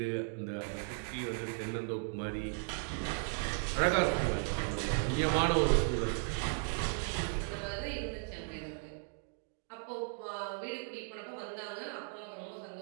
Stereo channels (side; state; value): left; silent; 54 dB below the other